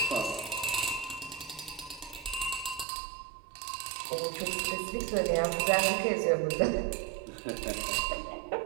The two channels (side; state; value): left; drops out; at 2.9 s